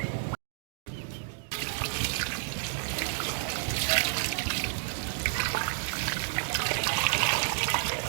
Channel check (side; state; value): left; silent; digital silence